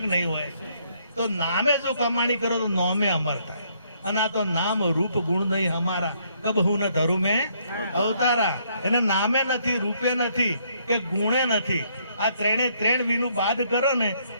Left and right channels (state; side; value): inverted; both; correlation -0.69